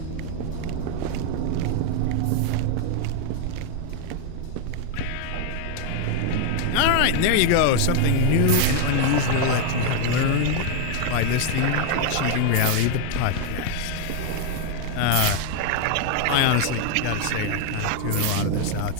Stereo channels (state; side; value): different; both; correlation 0.00